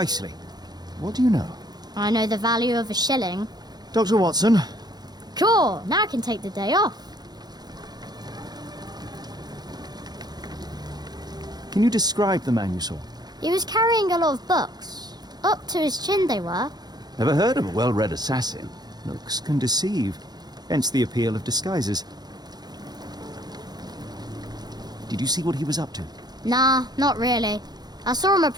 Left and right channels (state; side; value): late; left; 0.20 ms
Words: What do you know? I know the value of a shilling. Dr. Watson, Cool, now I can take the day off. can you describe the man you saw? He was carrying a lot of books. Up to his chin they were. Never heard of a well-read assassin. Looks can deceive, hence the appeal of disguises. Did you see what he was up to? Nah, not really. I saw him